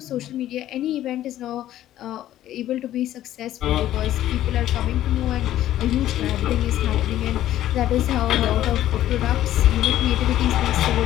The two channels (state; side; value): quieter; right; 13.0 dB